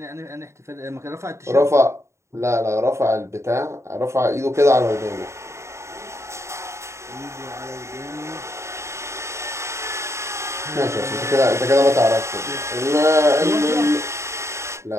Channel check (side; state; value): left; late; 0.14 ms